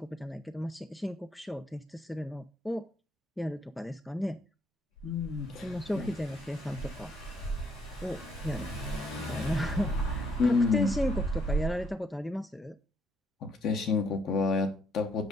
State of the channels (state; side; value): normal; both; correlation 0.70